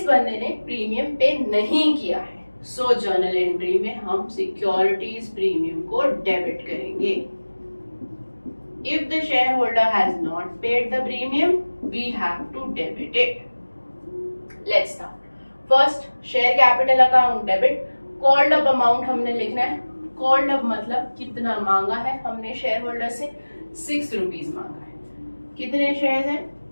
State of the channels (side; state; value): both; inverted; correlation -1.00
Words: बंदे ने प्रीमियम पे नहीं किया है, सो जर्नल एंट्री में हम सिक्योरिटीज प्रीमियम को डेबिट करेंगे. If the shareholder has not paid the premium, we have to debit it. Let's start. First, share capital account debit. Called up amount हमने लिखना है. Called up मतलब कितना मांगा है हमने शेयर होल्डर से, 6 rupees मांगा है. कितने शेयर्स हैं?